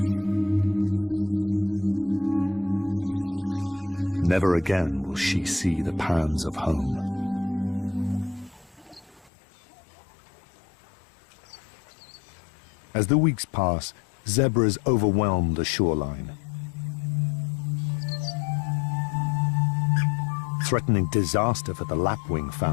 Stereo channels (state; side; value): drops out; right; at 9.3 s